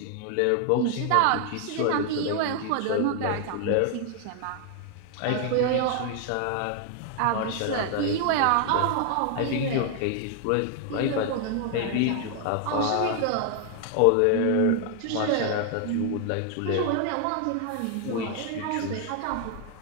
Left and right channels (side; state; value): both; different; correlation 0.00